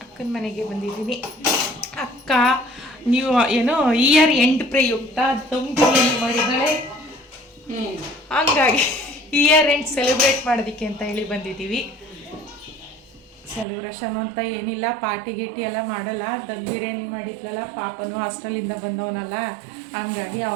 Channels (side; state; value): left; drops out; at 13.7 s